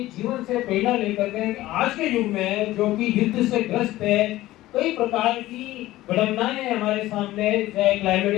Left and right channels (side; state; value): right; quieter; 16.3 dB